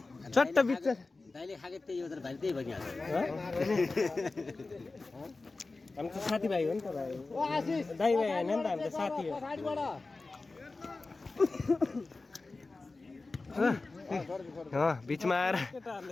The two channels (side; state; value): right; quieter; 3.6 dB